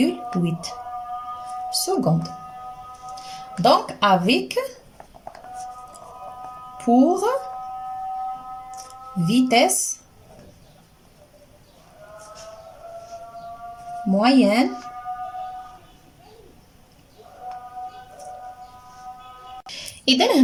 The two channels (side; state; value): both; identical; correlation 1.00